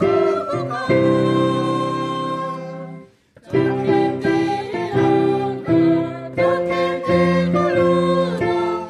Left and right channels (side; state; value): both; identical; correlation 1.00